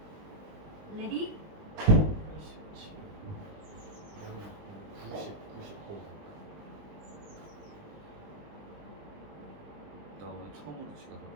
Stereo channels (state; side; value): late; left; 19 ms